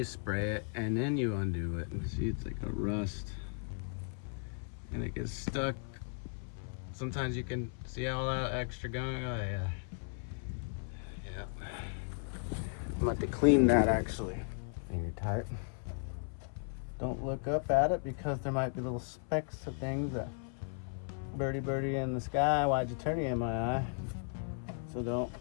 spray it, and then you undo it. See, it's like a rust, and it gets stuck. Sometimes you can see all that extra gunk. Oh yeah, yeah. I'm about to clean that actually. Finger tight. Don't look up at it because there might be little specks of things that birdie in the sky. Why'd you turn it in my eye? So don't,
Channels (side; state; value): right; silent; 54 dB below the other